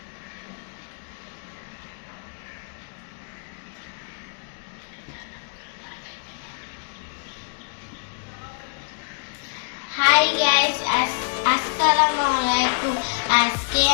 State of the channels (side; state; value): right; silent; digital silence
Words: হাই গাইস, আসসালামু আলাইকুম। আজকে